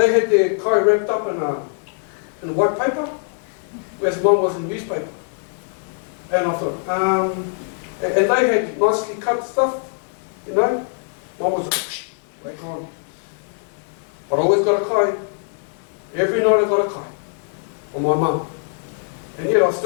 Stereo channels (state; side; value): silent; right; 64 dB below the other